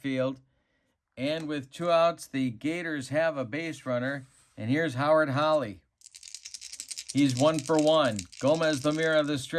And with 2 outs, the Gators have a base runner. And here's Howard Holly. He's 1 for 1. Gomez Lemira, the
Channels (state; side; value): identical; both; correlation 1.00